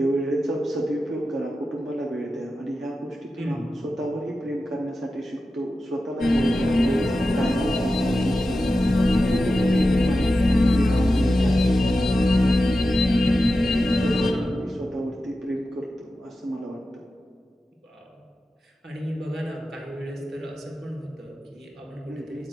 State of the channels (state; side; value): normal; both; correlation 0.92